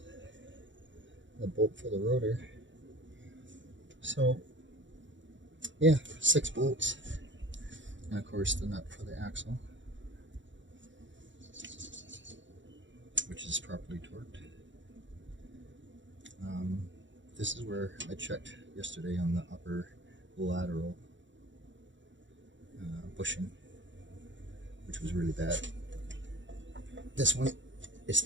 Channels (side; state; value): left; late; 0.54 ms